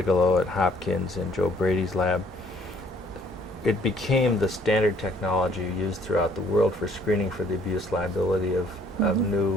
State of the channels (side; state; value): both; normal; correlation 0.61